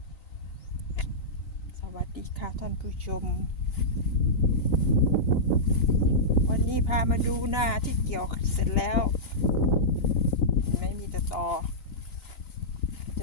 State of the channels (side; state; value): right; late; 3.9 ms